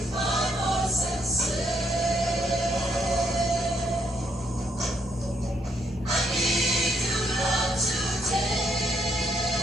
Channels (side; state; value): both; normal; correlation 0.74